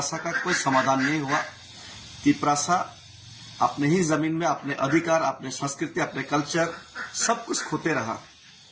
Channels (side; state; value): both; identical; correlation 1.00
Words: का कोई समाधान नहीं हुआ। त्रिपुरा अपने ही जमीन में अपने अधिकार, अपने संस्कृति, अपने कल्चर सब कुछ खोते रहा।